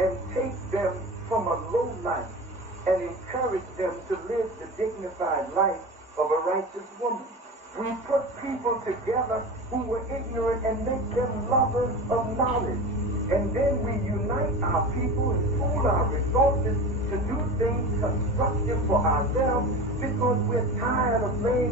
take them from a low life and encourage them to live the dignified life of a righteous woman. We put people together who were ignorant and make them lovers of knowledge. And then we unite our people and pool our resources to do things constructive for ourselves because we're tired of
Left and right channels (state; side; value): normal; both; correlation 0.30